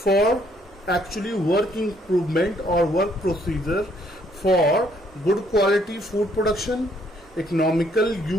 actually work improvement or work procedure for good quality food production, economical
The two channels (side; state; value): both; normal; correlation 0.67